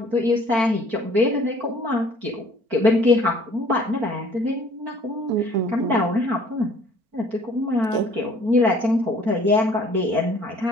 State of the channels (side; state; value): left; late; 4.4 ms